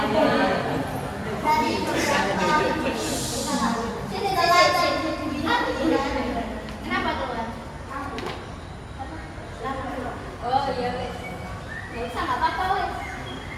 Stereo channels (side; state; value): both; identical; correlation 1.00